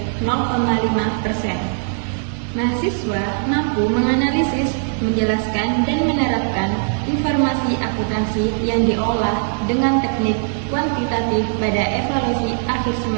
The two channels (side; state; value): left; silent; 66 dB below the other